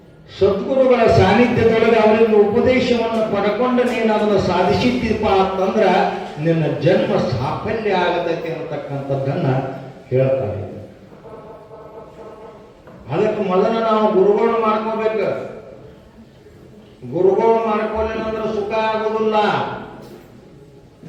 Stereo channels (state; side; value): identical; both; correlation 1.00